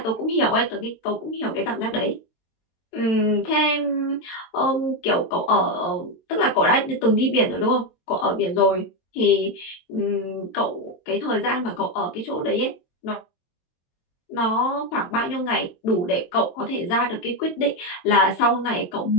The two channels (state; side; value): late; right; 23 ms